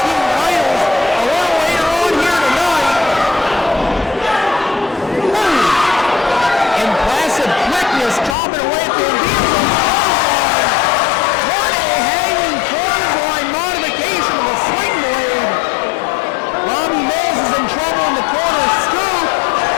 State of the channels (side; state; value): right; drops out; at 8.3 s